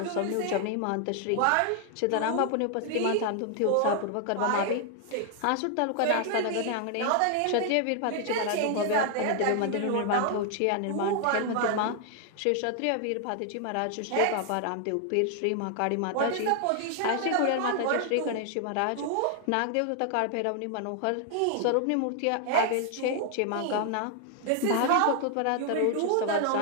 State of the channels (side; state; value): both; different; correlation 0.00